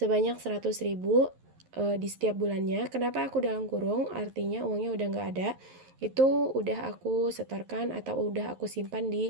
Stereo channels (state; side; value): late; left; 11 ms